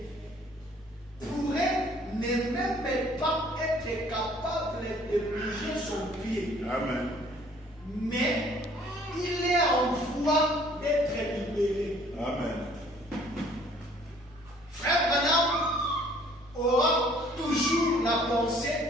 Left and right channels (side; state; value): both; normal; correlation 0.57